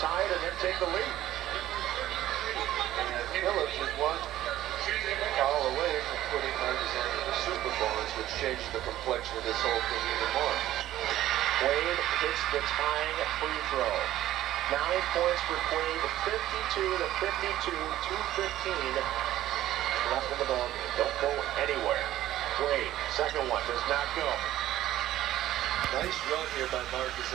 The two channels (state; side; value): quieter; left; 13.8 dB